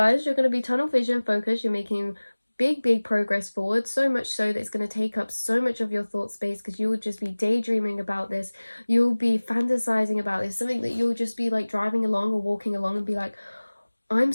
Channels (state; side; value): inverted; both; correlation -1.00